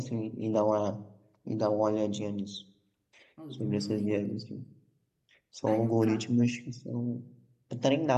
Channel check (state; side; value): identical; both; correlation 1.00